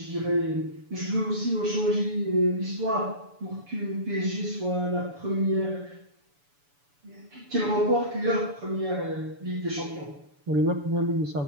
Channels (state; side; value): late; left; 7.0 ms